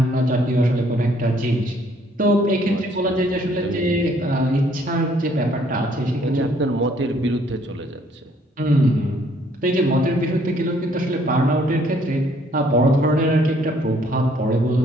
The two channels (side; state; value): both; normal; correlation 0.64